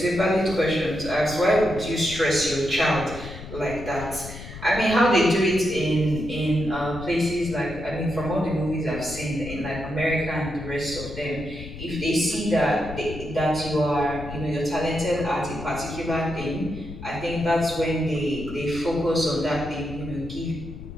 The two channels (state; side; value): noise; left; rumble, 12 dB below the sound